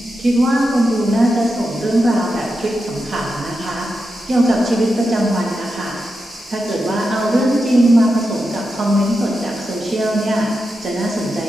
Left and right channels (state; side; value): normal; both; correlation 0.88